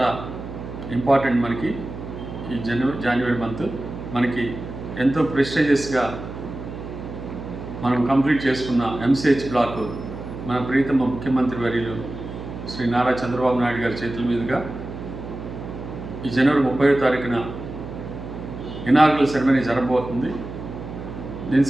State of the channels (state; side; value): noise; right; hum, 10 dB below the sound